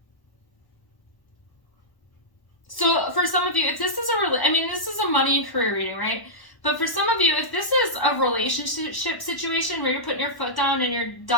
So for some of you, if this is this is a money and career reading, right? But for some of you, if this is a relationship situation where you're putting your foot down and you're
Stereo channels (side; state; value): right; late; 1.1 ms